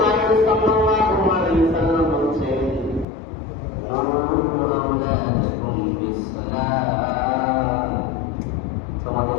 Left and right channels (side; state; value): right; drops out; at 3.1 s